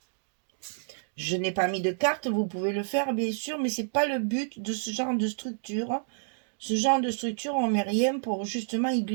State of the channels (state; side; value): silent; left; digital silence